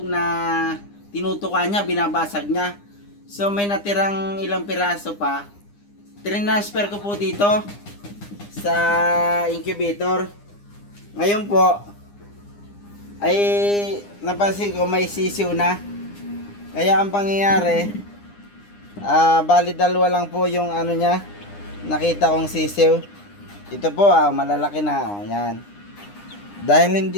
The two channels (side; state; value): right; late; 9.8 ms